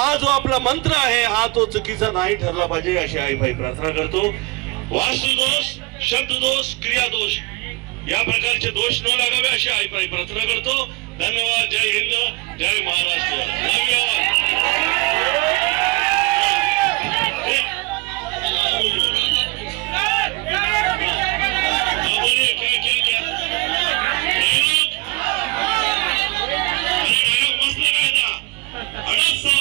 जो आपला मंत्र आहे हा तो चुकीचा नाही ठरला पाहिजे अशी आई भाई प्रार्थना करतो। वास्तुदोष शब्ददोष क्रियादोष या प्रकारचे दोष न लागावे अशी आई भाई प्रार्थना करतो। धन्यवाद। जय हिंद जय महाराष्ट्र। लव यू ऑल।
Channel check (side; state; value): left; quieter; 26.0 dB